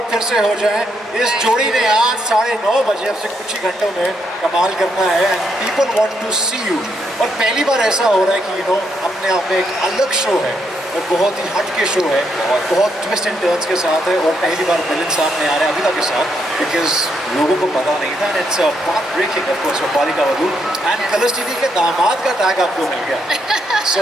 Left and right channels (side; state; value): both; normal; correlation 0.76